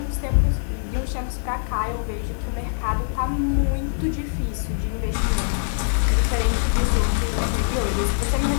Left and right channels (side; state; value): right; silent; 63 dB below the other